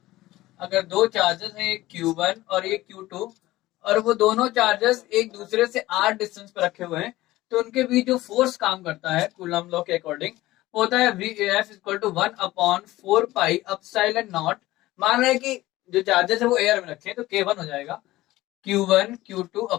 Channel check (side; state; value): right; quieter; 17.2 dB